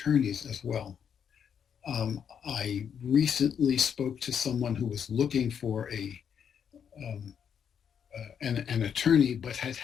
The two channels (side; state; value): right; quieter; 7.9 dB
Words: as well. I recently spoke to someone who was looking for an attorney, but had